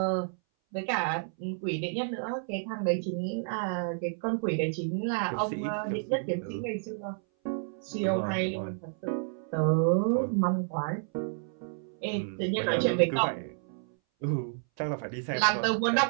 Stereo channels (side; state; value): left; silent; 58 dB below the other